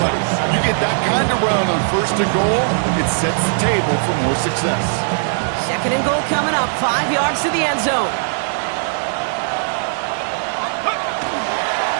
You get that kind of run on first and goal, it sets the table for more success. Second and goal coming up, 5 yards to the end zone.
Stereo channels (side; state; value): left; silent; 67 dB below the other